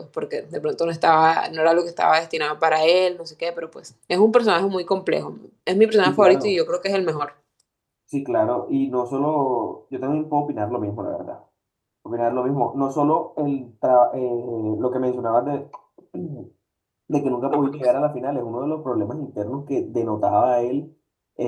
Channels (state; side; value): identical; both; correlation 1.00